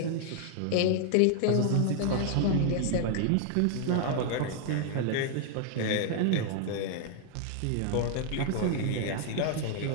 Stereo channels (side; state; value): both; different; correlation 0.00